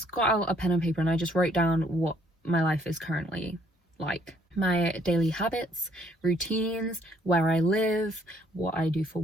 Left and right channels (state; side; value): normal; both; correlation 0.66